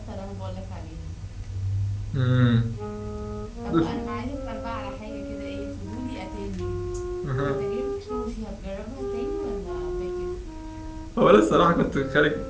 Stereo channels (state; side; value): identical; both; correlation 1.00